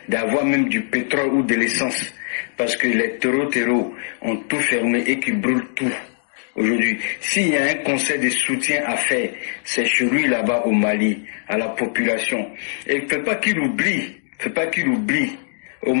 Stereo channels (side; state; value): right; silent; digital silence